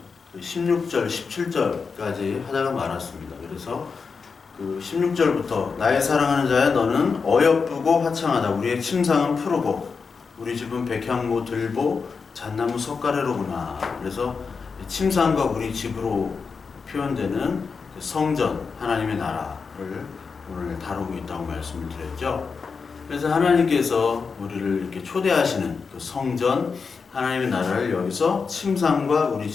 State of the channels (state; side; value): quieter; right; 5.2 dB